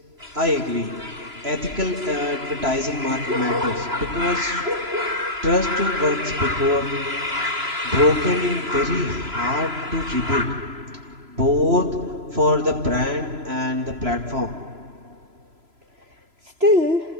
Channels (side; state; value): left; late; 3.0 ms